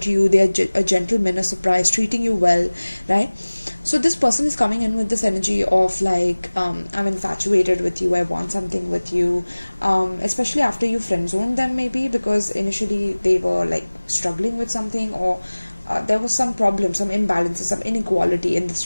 you, they are a gentleman, a surprise, treating you well, right? So this person is coming in with this energy of like, I'm infatuated with you, I want something with you, especially after you friend zoned them, maybe because initially they were like struggling with something, or there was some problem, some imbalances, some inequality in this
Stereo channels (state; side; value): inverted; both; correlation -1.00